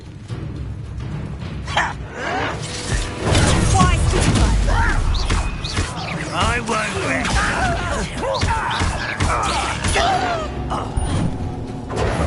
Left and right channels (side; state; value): both; identical; correlation 1.00